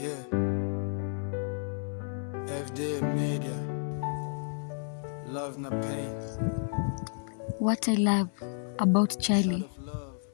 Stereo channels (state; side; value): silent; right; 57 dB below the other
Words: Yeah. FD Media. Love na pain. What I love about Charlie.